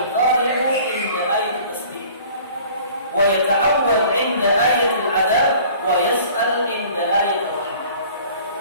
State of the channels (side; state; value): both; inverted; correlation -0.49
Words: inda ayat tasbih wa yata'awwal inda ayat al-'adab wa yas'al inda ayat ar-rahmah.